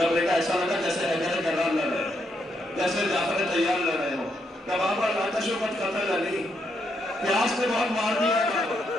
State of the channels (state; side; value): normal; both; correlation 0.78